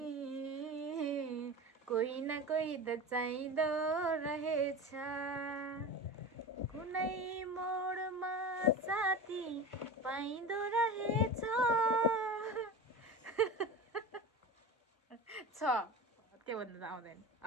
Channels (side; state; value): both; normal; correlation 0.29